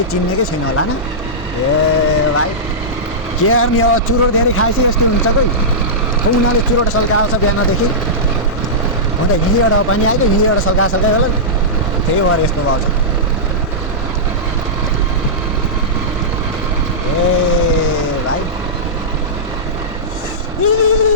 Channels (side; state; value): both; normal; correlation -0.14